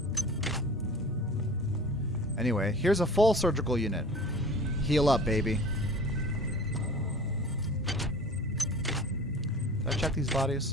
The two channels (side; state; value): both; normal; correlation 0.42